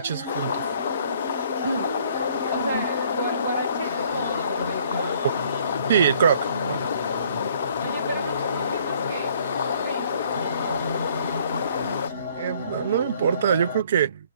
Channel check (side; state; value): both; inverted; correlation -0.60